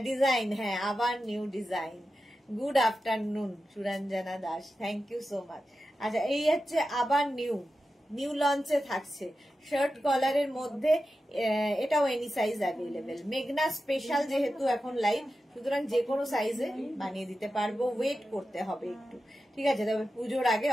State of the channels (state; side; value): normal; both; correlation 0.92